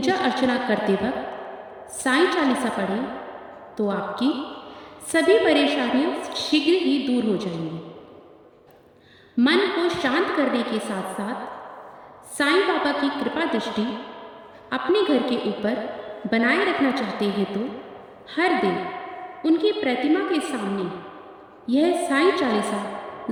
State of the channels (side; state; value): both; identical; correlation 1.00